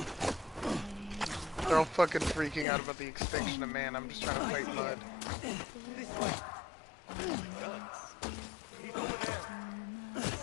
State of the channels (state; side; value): drops out; right; at 2.7 s